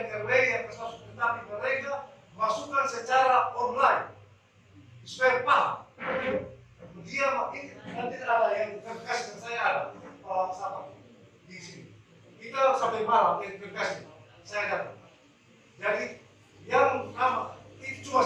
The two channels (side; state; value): both; identical; correlation 1.00